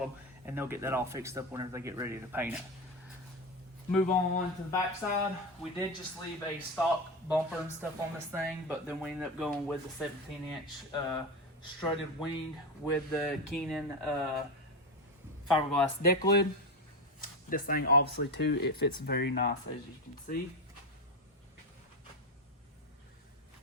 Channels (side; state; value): both; normal; correlation 0.16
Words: and they'll get that all fixed up whenever they get ready to paint it. Move on to the back side. We did just leave a stock bumper and stuff on this thing, but then we ended up going with the 17-inch strutted wing with the Canaan fiberglass deck lid. This thing, obviously, too, it fits very nice, as you can see.